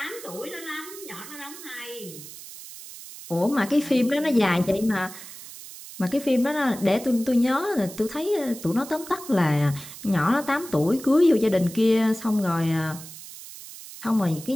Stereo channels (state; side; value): noise; right; hiss, 14 dB below the sound